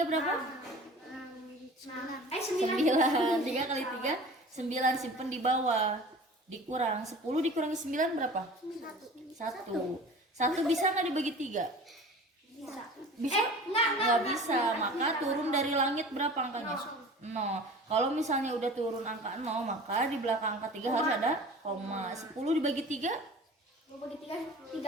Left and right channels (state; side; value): normal; both; correlation 0.41